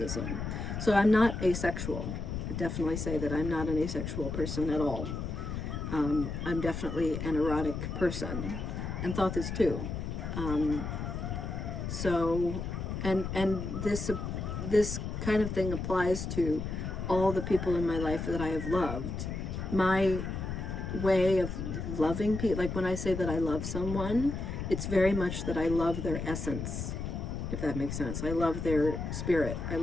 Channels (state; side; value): noise; left; rumble, 4 dB below the sound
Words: So I'm not asexual. I definitely say that I'm not an asexual person at all. I'm definitely an erotic person, and Thoth is too. This kind of thing applies to all the people in my life that I have loved. My way of loving people, like when I say that I love someone, it's very much that I love their essence, if that makes sense. I love their spirit. I